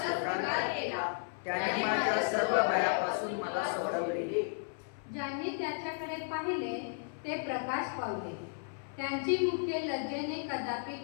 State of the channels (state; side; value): silent; right; 55 dB below the other